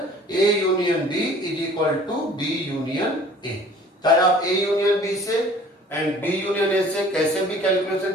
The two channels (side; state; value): both; normal; correlation 0.50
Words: A union B is equal to B union A. चाहे आप ए यूनियन बी से एंड बी यूनियन ए से कैसे भी कैलकुलेशन